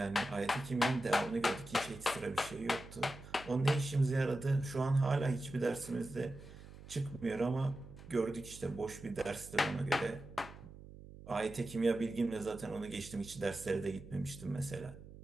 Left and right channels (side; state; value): right; noise; hum, 16 dB below the sound